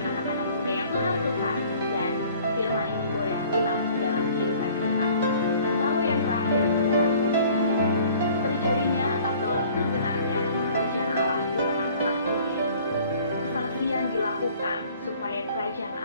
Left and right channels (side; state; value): both; inverted; correlation -0.52